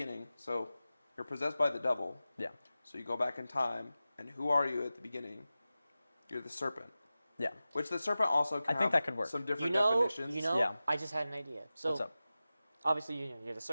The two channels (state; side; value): inverted; both; correlation -0.95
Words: So you're possessed by the devil. Yeah. So you go back in time, and who are you at the beginning? You're the serpent. Yeah. Which the serpent also can I think have that could work. some You different know, definitions. yeah. Yeah. I just had an idea. So What's up? obviously you're the